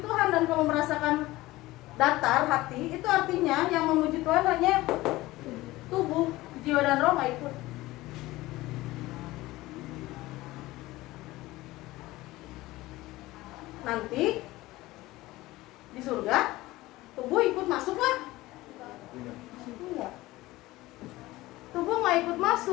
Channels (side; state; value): right; quieter; 18.5 dB